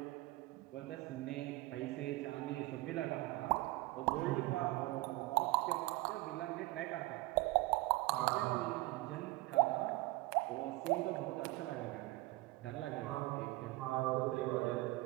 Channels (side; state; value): left; quieter; 20.5 dB